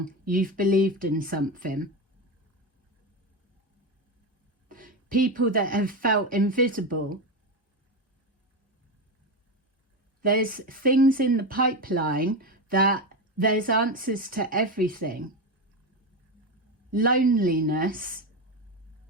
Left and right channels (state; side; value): normal; both; correlation 0.16